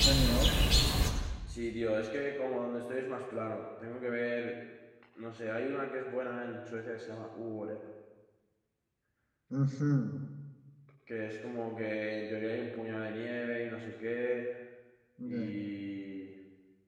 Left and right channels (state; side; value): identical; both; correlation 1.00